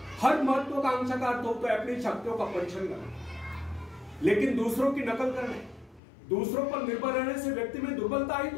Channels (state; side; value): drops out; right; at 6.0 s